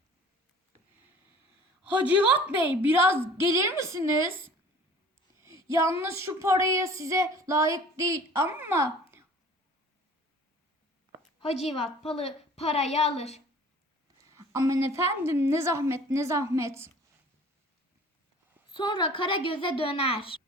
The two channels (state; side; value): normal; both; correlation 0.47